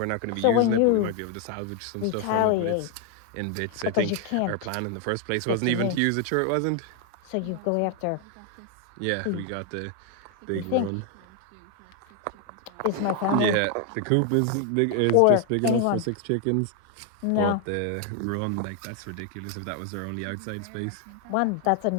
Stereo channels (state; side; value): different; both; correlation 0.01